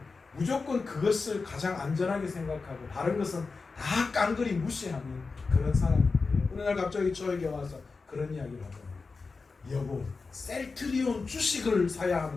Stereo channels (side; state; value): right; quieter; 4.3 dB